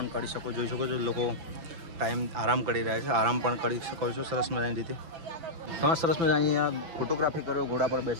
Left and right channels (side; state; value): left; late; 5.9 ms